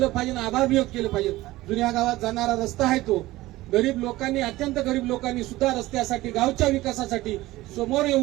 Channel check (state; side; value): quieter; left; 17.8 dB